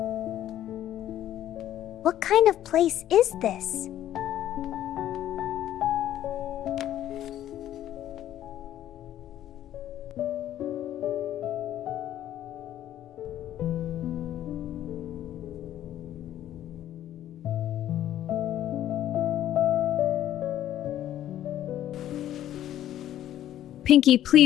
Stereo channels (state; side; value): quieter; right; 12.2 dB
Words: What kind of place is this? Pinky,